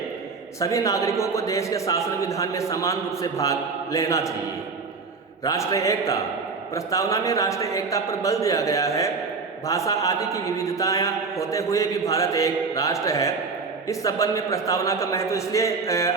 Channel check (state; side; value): quieter; left; 4.6 dB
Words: सभी नागरिकों को देश के शासन विधान में समान रूप से भाग लेना चाहिए। राष्ट्रीय एकता। प्रस्तावना में राष्ट्रीय एकता पर बल दिया गया है। भाषा आदि की विविधताएं होते हुए भी भारत एक राष्ट्र है। इस संबंध में प्रस्तावना का महत्व इसलिए